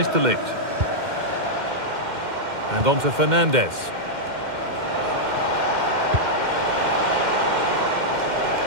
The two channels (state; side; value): late; left; 2.1 ms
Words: de Ligt. And on to Fernandes.